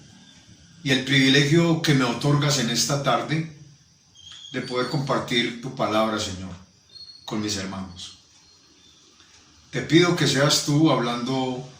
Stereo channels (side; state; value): both; identical; correlation 1.00